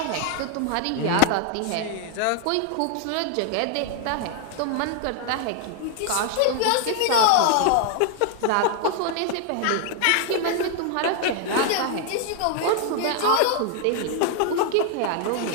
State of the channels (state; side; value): different; both; correlation 0.00